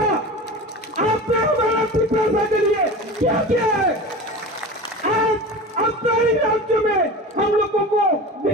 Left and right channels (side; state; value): both; normal; correlation 0.32